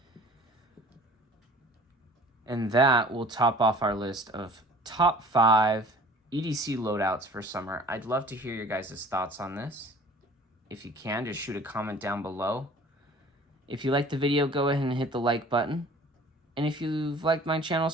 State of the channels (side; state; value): both; normal; correlation 0.48